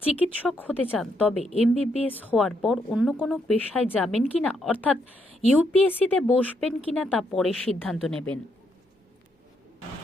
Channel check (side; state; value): both; normal; correlation 0.77